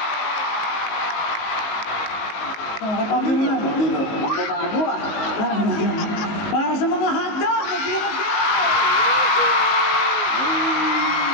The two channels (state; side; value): late; right; 19 ms